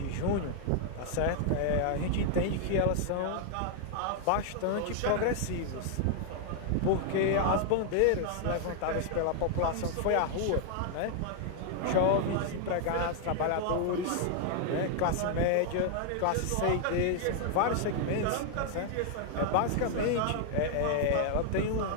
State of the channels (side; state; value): both; different; correlation 0.00